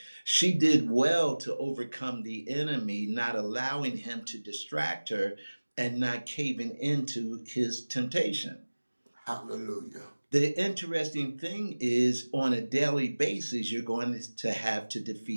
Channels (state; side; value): inverted; both; correlation -1.00